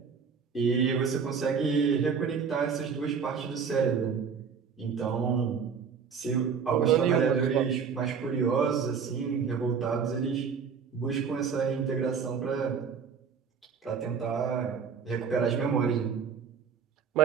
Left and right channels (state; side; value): quieter; left; 6.2 dB